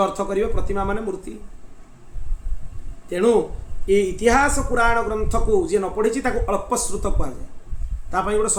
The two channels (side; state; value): both; identical; correlation 1.00